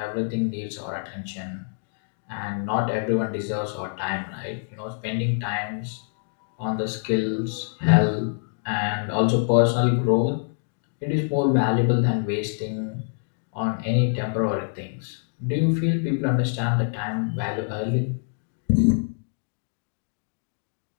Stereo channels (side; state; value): right; silent; digital silence